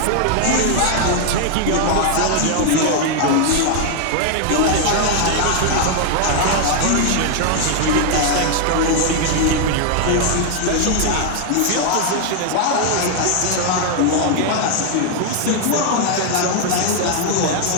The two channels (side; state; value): both; different; correlation 0.00